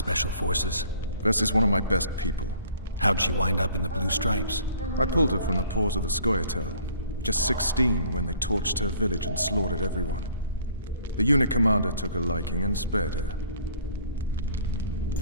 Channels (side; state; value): both; inverted; correlation -0.55